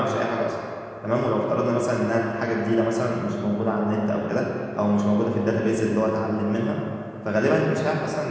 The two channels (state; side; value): identical; both; correlation 1.00